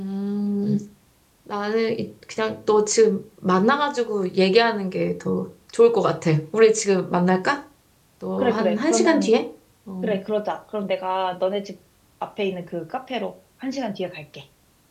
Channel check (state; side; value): identical; both; correlation 1.00